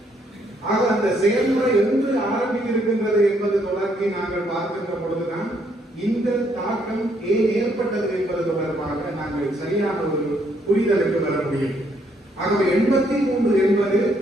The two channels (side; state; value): both; normal; correlation 0.71